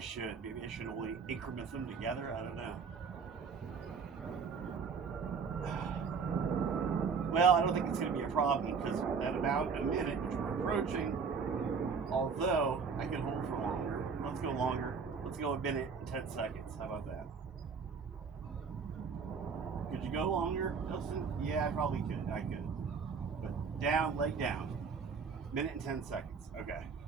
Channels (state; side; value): quieter; left; 5.6 dB